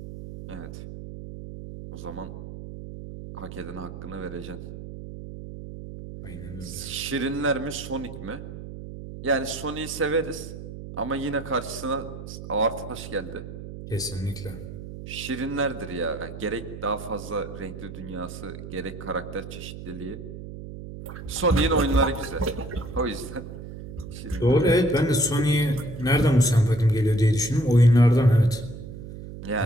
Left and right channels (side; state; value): right; noise; hum, 11 dB below the sound